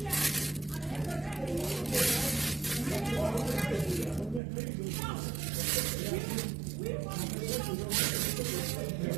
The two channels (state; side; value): drops out; left; at 4.4 s